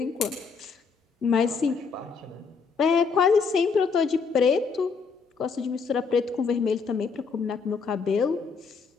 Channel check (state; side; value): quieter; right; 5.2 dB